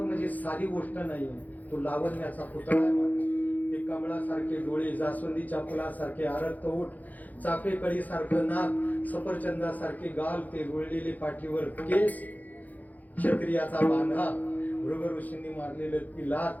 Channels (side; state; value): right; late; 0.080 ms